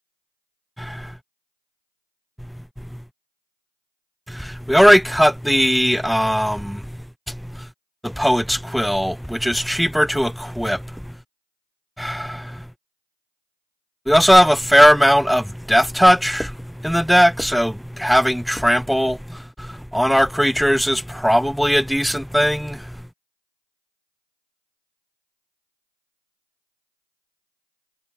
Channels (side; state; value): both; identical; correlation 1.00